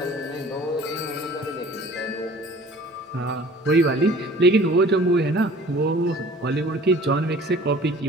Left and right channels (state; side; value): normal; both; correlation 0.48